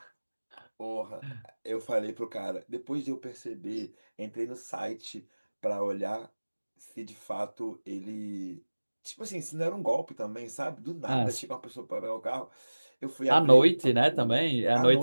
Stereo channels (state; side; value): inverted; both; correlation -1.00